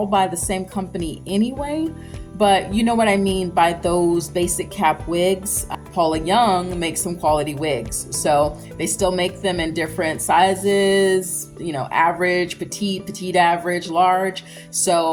by the same company anyway, but you know what I mean by those basic cap wigs. Paula Young makes some quality wigs, so they still make them in different sizes, you know, average, petite average, large,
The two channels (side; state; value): both; identical; correlation 1.00